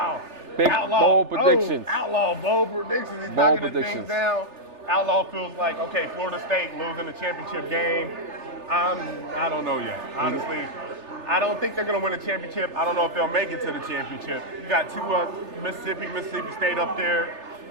Watch. Big, bold predictions. Outlaw, bold predictions. He's Bold knocking the things predictions. down. Outlaw feels like, okay, Florida State losing the championship game. I don't know yet. Honestly, I don't think they're going to win a championship. I don't know if they'll make it to the championship. You got 2 Mississippi State up there.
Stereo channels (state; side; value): late; left; 3.3 ms